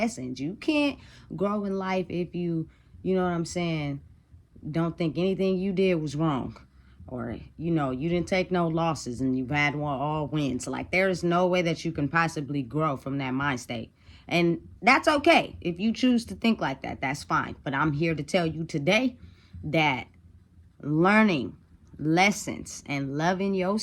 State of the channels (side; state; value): both; identical; correlation 1.00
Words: You can't grow in life if you know what I'm saying, don't think anything you did was wrong, or you didn't take no losses and you've had all wins. Like, there is no way that you can possibly grow from that mind state, and that's okay. If you choose to think like that, that's fine. But I'm here to tell you today that learning lessons and loving